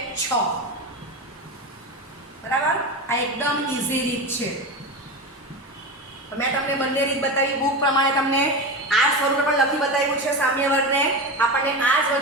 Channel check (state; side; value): normal; both; correlation 0.22